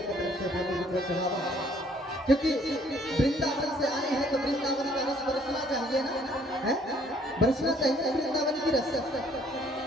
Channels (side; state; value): both; normal; correlation 0.62